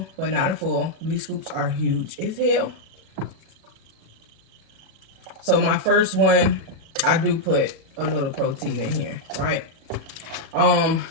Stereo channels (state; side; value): late; left; 37 ms